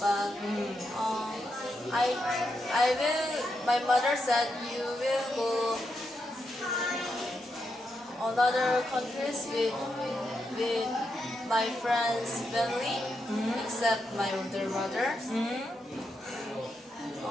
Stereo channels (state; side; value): normal; both; correlation 0.84